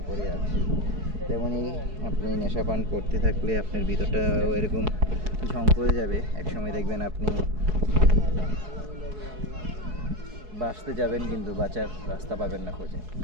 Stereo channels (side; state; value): left; late; 4.7 ms